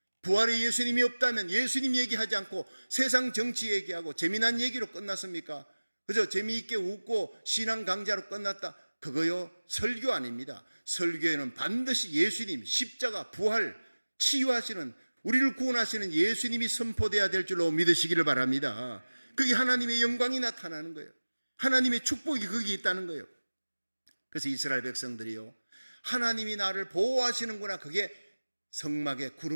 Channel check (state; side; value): inverted; both; correlation -1.00